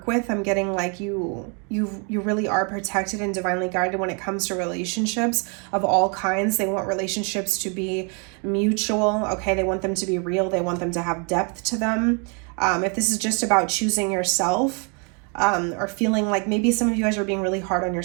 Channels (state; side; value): quieter; left; 35.8 dB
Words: with. I'm getting like you really are protected and divinely guided when it comes to relationships of all kinds. They want relationships to be mutual. Okay, they want them to be real. They want them to have depth to them. If this is just about choosing yourself, or feeling like maybe some of you guys are being really hard on